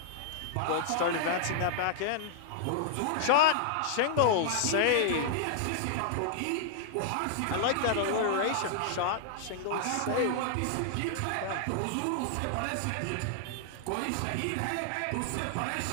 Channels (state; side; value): different; both; correlation -0.01